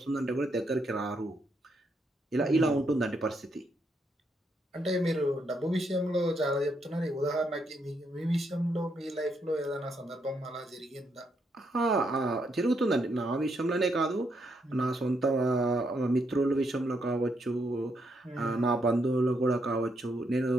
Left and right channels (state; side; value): normal; both; correlation 0.77